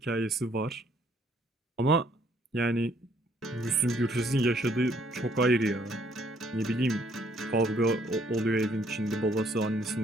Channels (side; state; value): both; normal; correlation 0.65